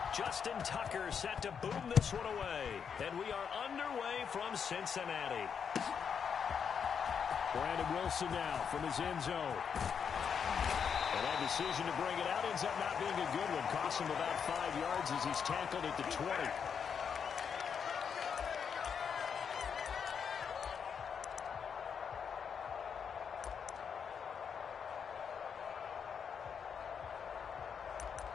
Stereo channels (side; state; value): right; quieter; 7.0 dB